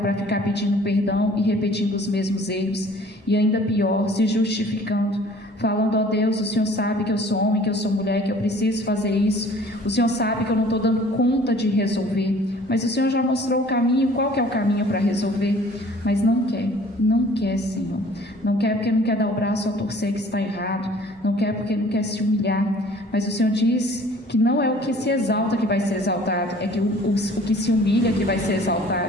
para ficar pedindo perdão e repetindo os mesmos erros e ainda pior, se justificando, falando: ó Deus, o Senhor sabe que eu sou homem, que eu sou mulher, que eu preciso fazer isso, o Senhor sabe que eu não estou dando conta de resolver, mas o Senhor já mostrou o caminho. Qual que é o caminho para resolver? Mas não quer, Senhor, não quer porque não quer dar o braço a torcer que está errado, não quer porque não quer se humilhar, mas o Senhor diz que não é o que se exalta que vai ser exaltado, é que o que se humilha que vai ser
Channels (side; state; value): both; normal; correlation 0.51